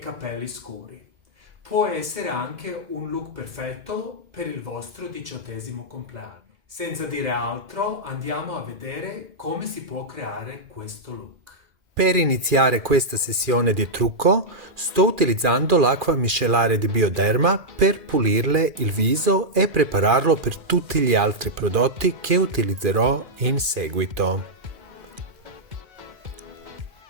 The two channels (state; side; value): late; left; 2.4 ms